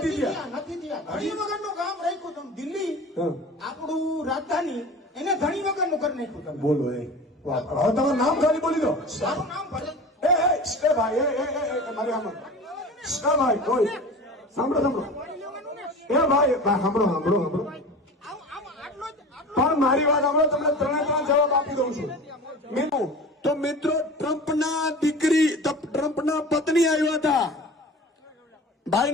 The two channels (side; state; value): both; normal; correlation 0.36